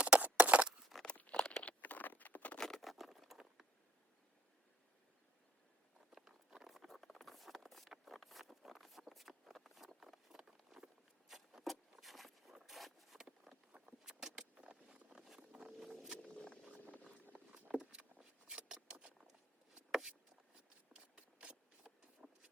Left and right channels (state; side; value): normal; both; correlation 0.63